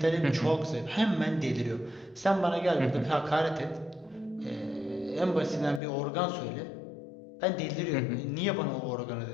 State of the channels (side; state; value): right; drops out; at 5.8 s